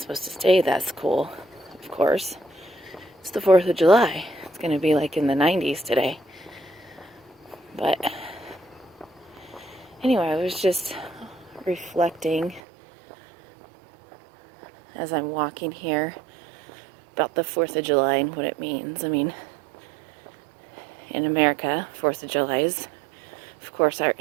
to stay that's cool, of course. It's the 4th of July. It's going to be like in the 90s today. But anyway, I was just reflecting as I'm walking here about the 4th of July and what it means. I mean, in America, 4th of July is, of course, our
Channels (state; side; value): drops out; left; at 12.6 s